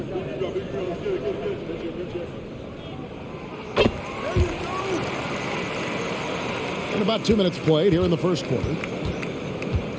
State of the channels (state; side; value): identical; both; correlation 1.00